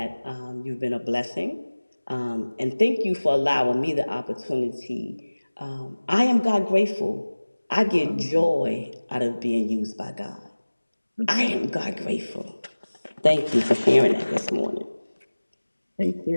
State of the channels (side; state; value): both; inverted; correlation -1.00